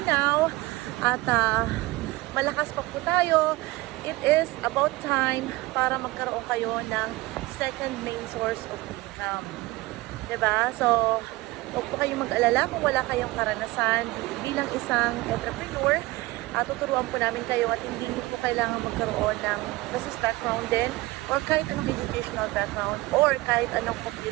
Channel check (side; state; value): left; quieter; 20.4 dB